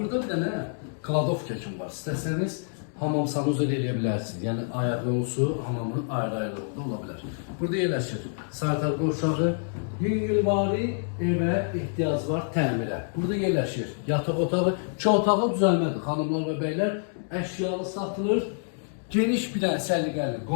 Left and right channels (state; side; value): silent; right; digital silence